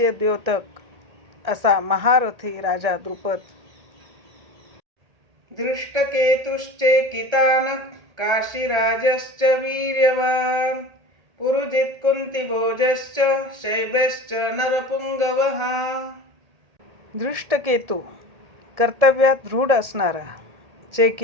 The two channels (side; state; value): left; late; 1.8 ms